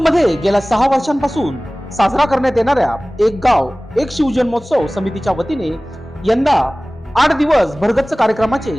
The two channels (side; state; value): both; normal; correlation 0.98